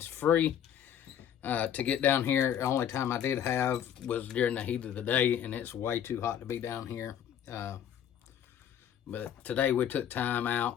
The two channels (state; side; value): quieter; right; 9.5 dB